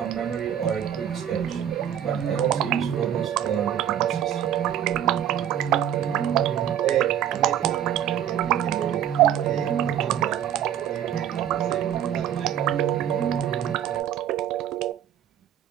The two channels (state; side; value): quieter; left; 10.2 dB